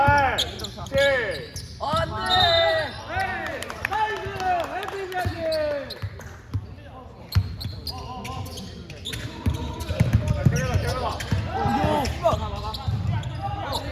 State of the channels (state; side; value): identical; both; correlation 1.00